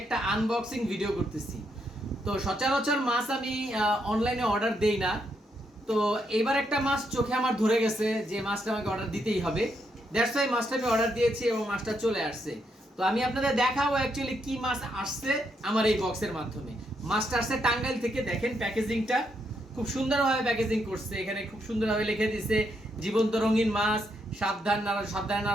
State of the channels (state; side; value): normal; both; correlation 0.78